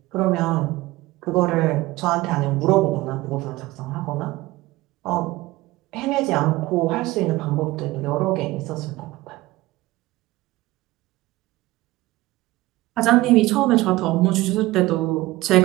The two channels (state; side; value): quieter; left; 18.7 dB